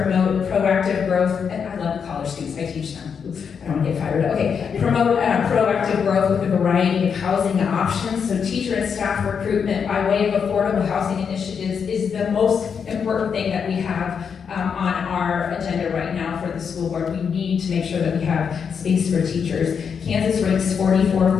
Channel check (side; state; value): right; quieter; 6.7 dB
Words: proactive growth, and I love college students, I teach them. Oops, I don't want to get fired up. Okay, promote proactive growth with a variety of housing options. So teacher and staff recruitment by way of affordable housing initiatives is the most important thing that we have on our agenda right now for the school board. We need to make sure that we have space for teachers. Kansas ranks